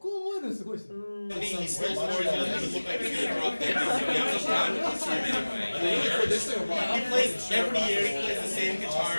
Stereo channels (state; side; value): inverted; both; correlation -1.00